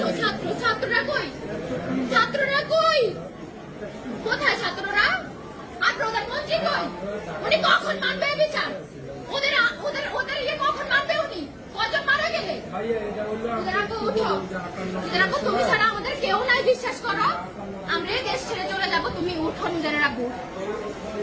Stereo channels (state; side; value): identical; both; correlation 1.00